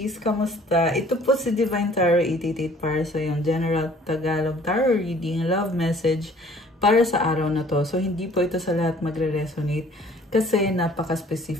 Kamusta? Ito po si Divine Tarot 888 para sa yung General Tagalog Tarot Reading Love Message para sa araw na to. So hindi po ito sa lahat magre-resonate kasi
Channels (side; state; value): both; normal; correlation 0.55